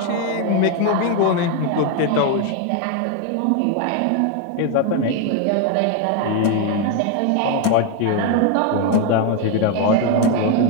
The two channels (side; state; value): both; different; correlation 0.01